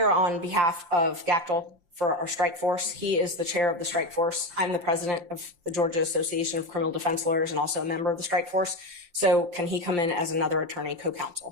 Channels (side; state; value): left; late; 5.7 ms